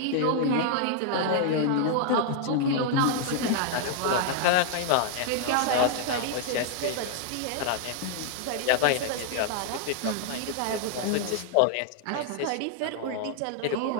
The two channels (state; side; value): different; both; correlation -0.01